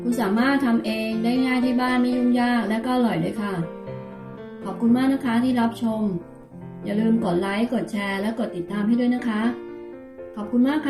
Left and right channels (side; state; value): both; identical; correlation 1.00